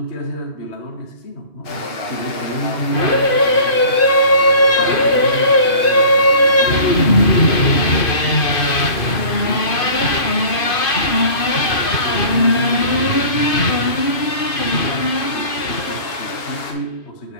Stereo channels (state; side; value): late; right; 2.5 ms